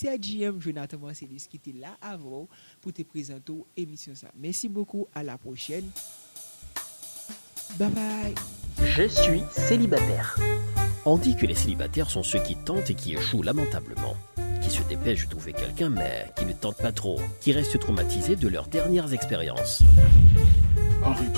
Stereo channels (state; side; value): inverted; both; correlation -1.00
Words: JM Jonathan Marcellus qui était là avant pour te présenter l'émission ça. Merci beaucoup, à la prochaine. Bye bye. Je suis célibataire. On dit que les célibataires sont ceux qui tentent et qui échouent lamentablement, qui se dépêchent de trouver quelqu'un mais qui ne tentent pas trop, qui restent traumatisés de leurs dernières expériences.